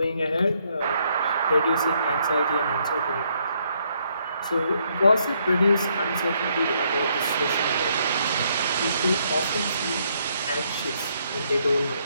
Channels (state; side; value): inverted; both; correlation -0.72